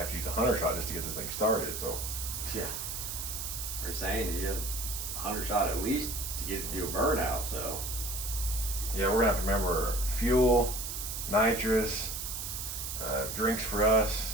to use a 100 shot just to get this thing started. So Yeah. We're saying that you have 100 shot at least to get it to do a burnout. So yeah, we're gonna have to remember fuel, nitrous, drinks for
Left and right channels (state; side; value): noise; right; hiss, 5 dB below the sound